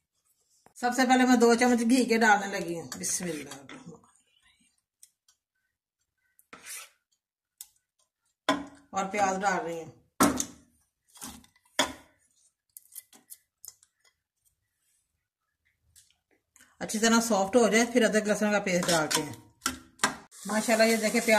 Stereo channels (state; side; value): identical; both; correlation 1.00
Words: सबसे पहले मैं 2 चम्मच घी के डालने लगी हूँ। बिस्मिल्लाह। और प्याज डाल रही हूँ। अच्छी तरह सॉफ्ट हो जाए फिर अदरक लहसुन का पेस्ट डालते हैं। माशाल्लाह ये देखे